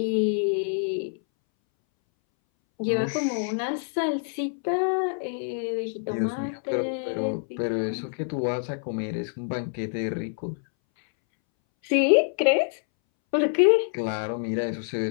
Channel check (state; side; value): silent; right; 61 dB below the other